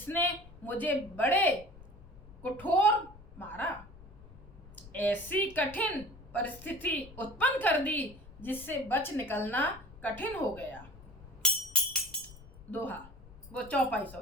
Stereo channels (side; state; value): left; noise; rumble, 19 dB below the sound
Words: मुझे बड़े कठोर मारा, ऐसी कठिन परिस्थिति उत्पन्न कर दी जिससे बच निकलना कठिन हो गया। दोहा वो चौपाई